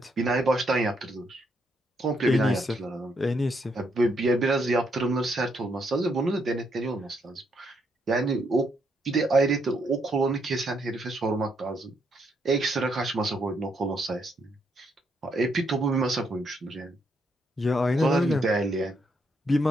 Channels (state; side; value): normal; both; correlation 0.76